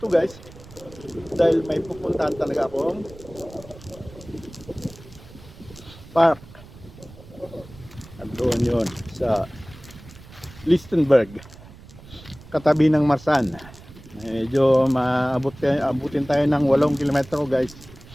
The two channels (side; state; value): right; noise; rumble, 19 dB below the sound